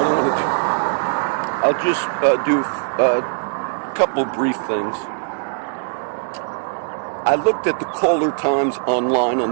I'll just do a couple brief things. I looked at the caller times online on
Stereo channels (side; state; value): left; silent; digital silence